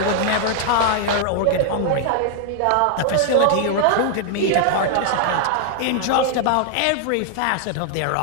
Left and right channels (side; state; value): both; different; correlation 0.00